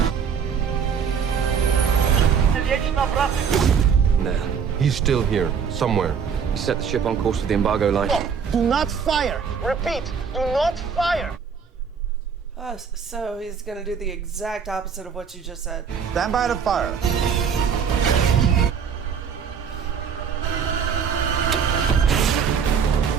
Nah. He's still here, somewhere. He set the ship on course for the embargo line. Do not fire! Repeat, do not fire! Oh, so he's gonna do the exact opposite of what you just said. Stand by to fire.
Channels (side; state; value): left; quieter; 6.8 dB